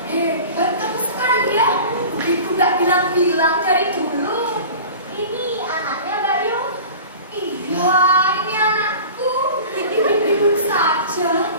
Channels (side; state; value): both; inverted; correlation -0.38